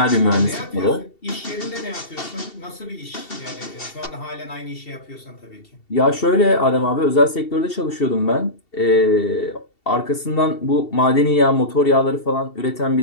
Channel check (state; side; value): late; right; 2.7 ms